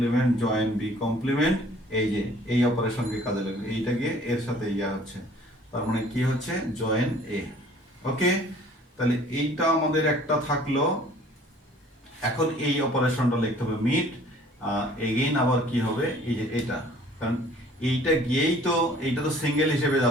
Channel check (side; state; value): both; normal; correlation 0.53